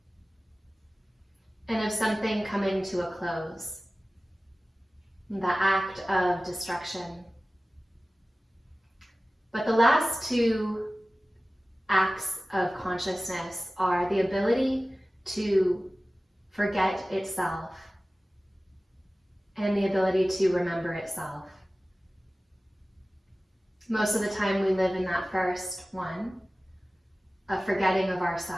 and of something coming to a close, the act of destruction. But the last 2 acts of consciousness are the ability to forget itself and the ability to remember itself. Most of the time we live in that first one, a forgetting of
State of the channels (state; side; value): normal; both; correlation 0.97